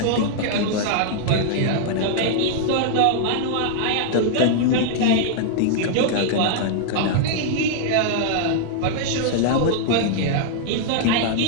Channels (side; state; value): both; different; correlation -0.01